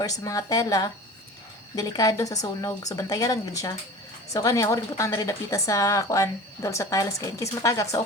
sa mga tela delikado sa sunog so bantayan lang gid siya. So kani ako rin butang na rin dapita sa kuan dol sa tiles kay in case matagak so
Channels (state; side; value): normal; both; correlation 0.38